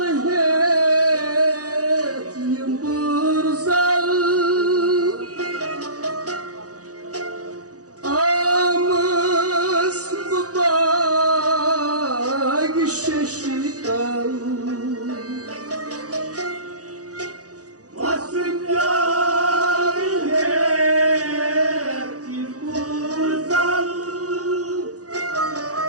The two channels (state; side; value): late; left; 0.67 ms